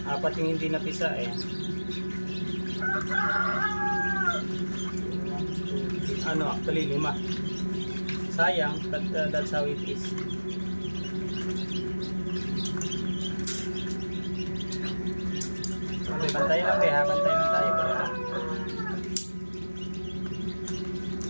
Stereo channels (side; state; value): both; inverted; correlation -1.00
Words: 5. Apat yung hindi napisa eh. 1, 2, 3. Actually 5. Sayang, but that's how it is. Okay, bantay lang ha. Bantay lang tayo.